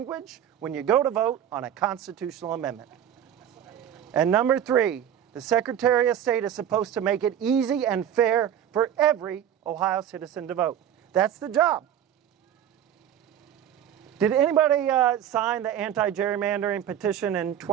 when you go to vote on a constitutional amendment. And number 3, the Secretary of State is supposed to make it easy and fair for every Ohio citizen to vote. That's the job. Did anybody sign the anti-gerrymandering petition in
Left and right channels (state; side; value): quieter; left; 10.0 dB